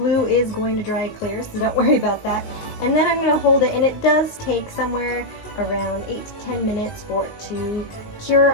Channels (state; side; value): late; right; 19 ms